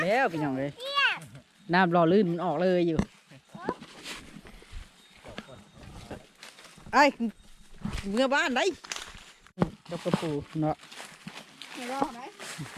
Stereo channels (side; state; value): both; identical; correlation 1.00